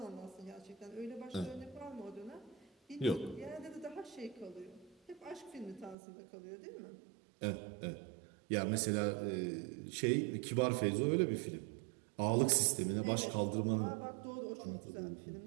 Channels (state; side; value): drops out; left; at 6.0 s